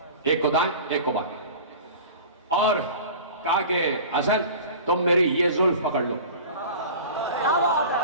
ایک کو دائیں ایک کو بائیں, اور کہا کہ حسن تم میری یہ زلف پکڑ لو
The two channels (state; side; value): inverted; both; correlation -0.38